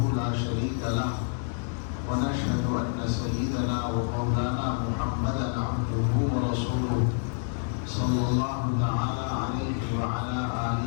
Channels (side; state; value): right; silent; 59 dB below the other